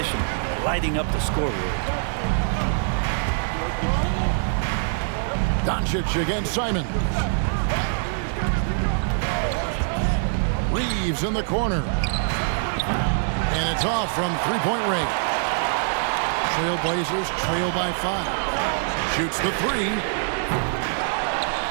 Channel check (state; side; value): silent; left; 63 dB below the other